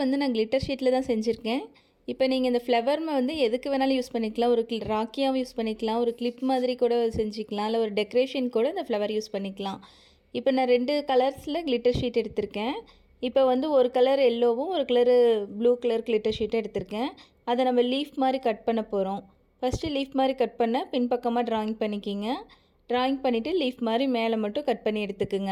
நான் கிளிட்டர் ஷீட்டில் தான் செஞ்சுருக்கேன். இப்போ நீங்கள் இந்த ஃப்ளவர்மை வந்து எதுக்கு வேணாலும் யூஸ் பண்ணிக்கலாம். ஒரு ராக்கியாகவும் யூஸ் பண்ணிக்கலாம், ஒரு கிளிப் மாதிரி கூட செஞ்சுக்கலாம், இல்லை ஒரு டெக்கரேஷன் கூட இந்த ஃப்ளவர் யூஸ் பண்ணிக்கலாம். இப்போ நான் 2 கலர்ஸில் கிளிட்டர் ஷீட் எடுத்திருக்கேன். இப்போ வந்து ஒரு கலர் எல்லோவும் ஒரு கலரு ப்ளூ கலர் கிளிட்டர் ஷீட்டும் எடுத்திருக்கேன். அதை நம்ம லீஃப் மாதிரி கட் பண்ண போகிறோம். ஃபஸ்ட்டு லீஃப் மாதிரி கட் பண்ண பின்பக்கமாக ட்ராயிங் பண்ணிக்கிங்க. ட்ராயிங் பண்ணிவிட்டு லீஃப் மாதிரி மேலே மட்டும் கட் பண்ணி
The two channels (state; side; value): identical; both; correlation 1.00